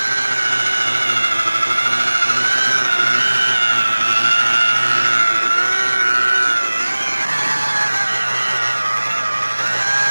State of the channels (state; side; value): inverted; both; correlation -1.00